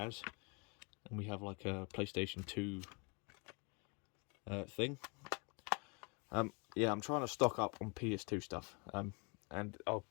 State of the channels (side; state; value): right; quieter; 33.1 dB